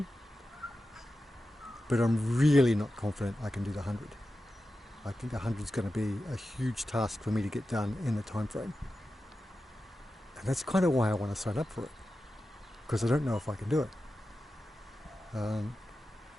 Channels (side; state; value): both; normal; correlation 0.92